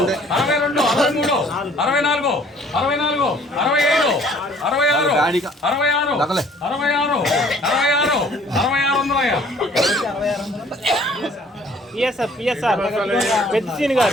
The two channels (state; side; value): normal; both; correlation 0.56